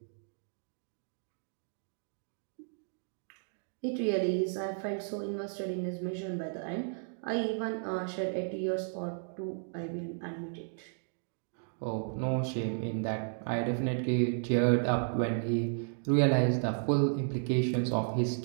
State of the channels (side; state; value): left; silent; digital silence